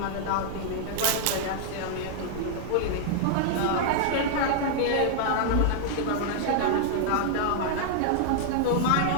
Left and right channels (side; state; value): both; different; correlation 0.00